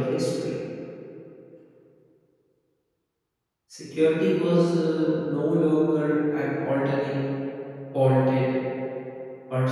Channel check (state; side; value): identical; both; correlation 1.00